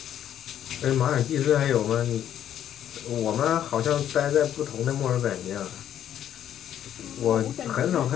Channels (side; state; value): right; quieter; 10.5 dB